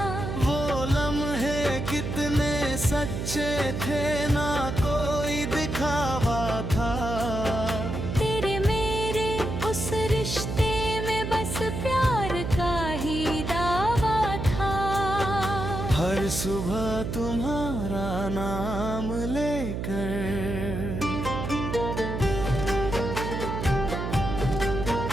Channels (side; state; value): right; noise; hum, 3 dB below the sound